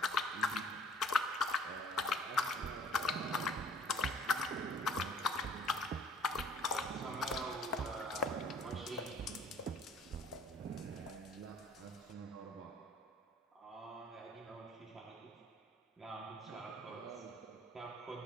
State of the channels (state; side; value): normal; both; correlation 0.55